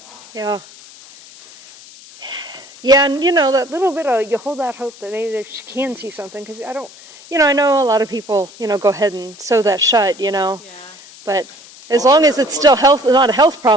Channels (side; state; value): left; noise; hiss, 21 dB below the sound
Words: now. Yeah. Yeah, and that little bit of, you hold that hope that maybe she can see something, because I don't, I know a lot of people, go ahead and sew that shut, Yeah. but as long as it's still not a health